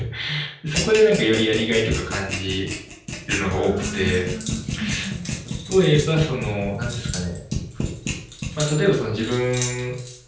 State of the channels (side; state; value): both; identical; correlation 1.00